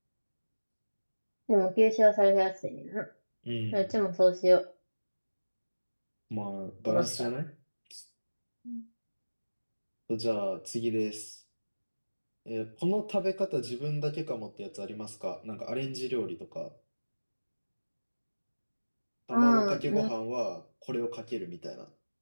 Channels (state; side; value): inverted; both; correlation -1.00